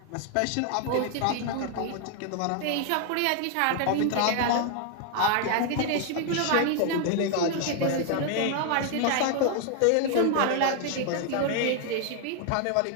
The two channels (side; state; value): both; different; correlation 0.00